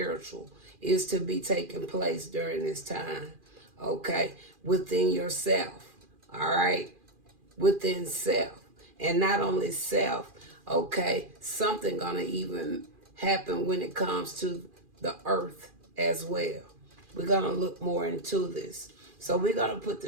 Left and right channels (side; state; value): left; late; 2.4 ms